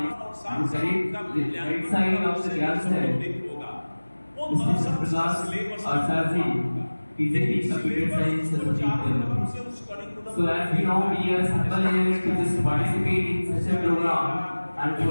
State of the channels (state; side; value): inverted; both; correlation -1.00